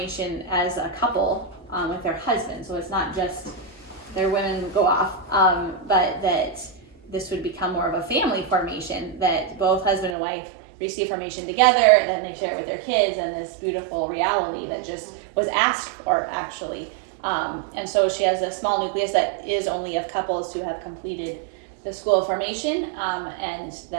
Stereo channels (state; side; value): drops out; left; at 10.2 s